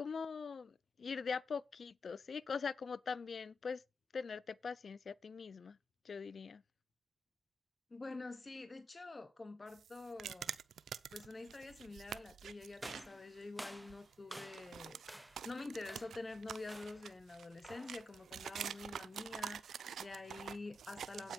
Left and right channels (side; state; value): both; normal; correlation 0.85